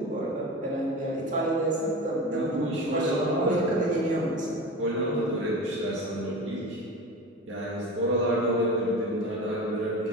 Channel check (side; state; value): both; normal; correlation 0.30